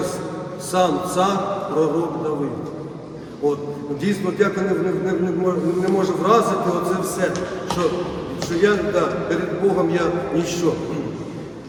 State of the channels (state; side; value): identical; both; correlation 1.00